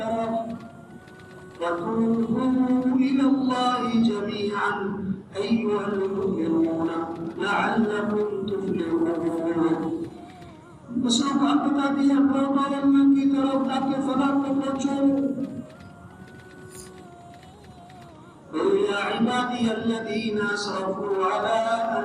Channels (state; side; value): identical; both; correlation 1.00